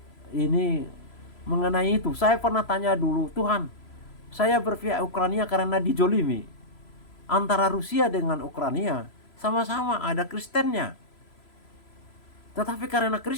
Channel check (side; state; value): right; late; 3.0 ms